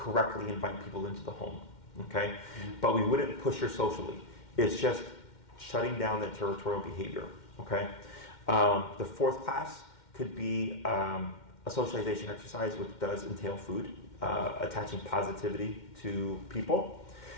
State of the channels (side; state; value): right; late; 2.1 ms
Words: invite people into the home, okay? But we wouldn't push her socially. It's just shutting down that territorial behavior, okay? The fourth class could be a socialization exercise, which does entail food, attaching positivity to people.